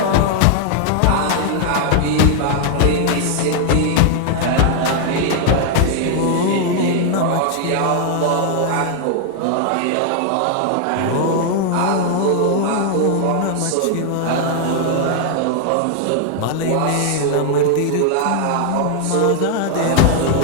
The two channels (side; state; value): both; different; correlation 0.00